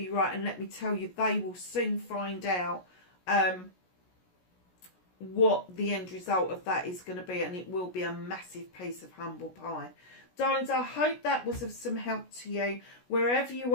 right. And let me tell you, they will soon find out what the end result of that is going to be. And it will be a massive piece of humble pie. Darlings, I hope that was of some help to you. Wherever you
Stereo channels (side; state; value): right; late; 16 ms